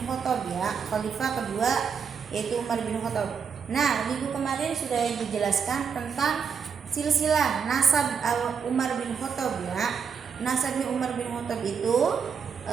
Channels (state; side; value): quieter; left; 6.5 dB